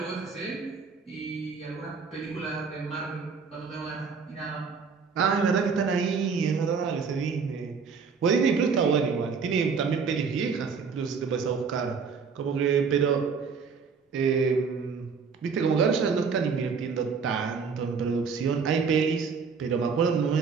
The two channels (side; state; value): left; quieter; 5.5 dB